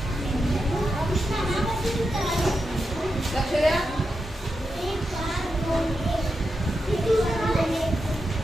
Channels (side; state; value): both; normal; correlation 0.87